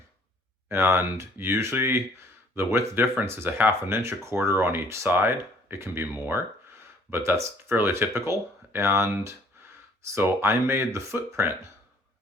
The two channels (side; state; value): both; normal; correlation 0.59